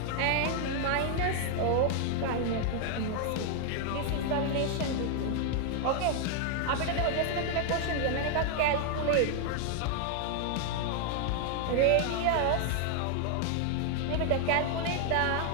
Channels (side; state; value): both; different; correlation 0.00